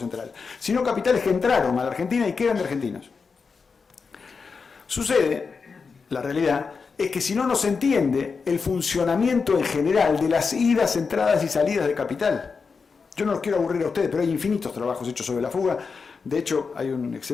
sino capitales que entraron a la Argentina y que eran de argentinos. Sucede, la realidad, es que si no nos entiende el funcionamiento en general de las idas, entradas y salidas de capital. Yo no los quiero aburrir a ustedes, pero hay infinitos trabajos hechos sobre la fuga. De hecho, hay un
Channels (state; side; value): quieter; right; 5.1 dB